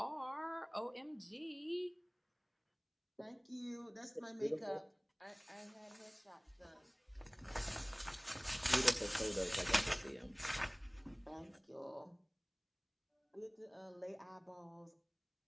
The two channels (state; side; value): identical; both; correlation 1.00